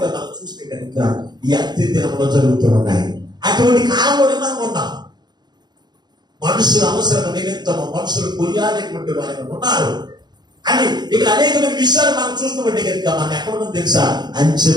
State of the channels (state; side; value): late; left; 0.21 ms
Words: మనం చూస్తే కనుక ఈ అంత్య దినంలో జరుగుతూ ఉన్నాయి. అటువంటి కాలంలోనే మనం ఉన్నాం. మనుషుల అవసరం నిమిత్తము మనుషులు కొనియాడేటువంటి వారు ఉన్నారు అని ఇక్కడ అనేకమైన విషయాలు మనం చూస్తుంటే కనుక మనం ఎక్కడ తెలుసా? అంత్య